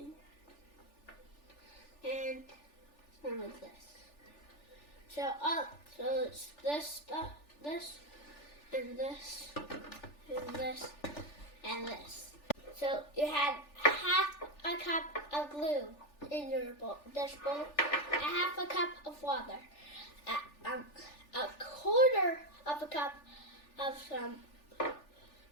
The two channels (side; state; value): right; late; 3.4 ms